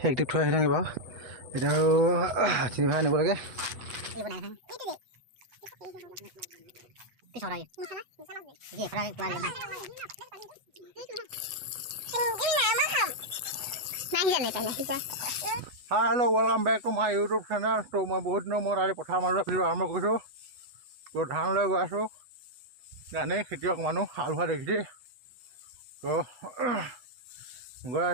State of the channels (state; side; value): late; left; 8.2 ms